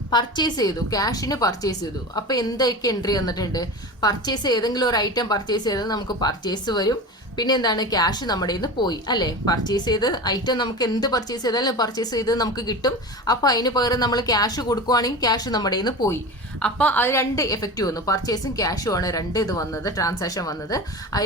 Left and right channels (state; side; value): normal; both; correlation 0.29